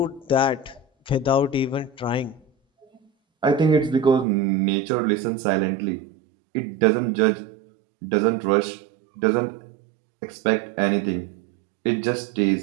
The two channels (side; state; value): left; drops out; at 4.2 s